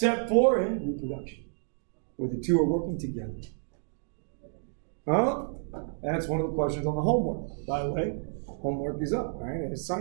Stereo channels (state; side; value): silent; left; digital silence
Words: for in reproduction, where the two are working together. Huh? That's one of the questions on the homework. By the way, homework is up, right? I